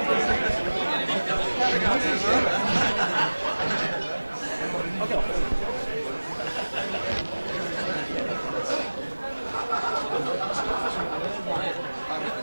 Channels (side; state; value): both; inverted; correlation -1.00